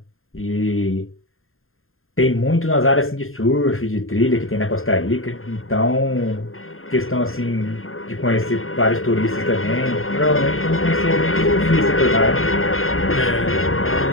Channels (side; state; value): right; late; 0.61 ms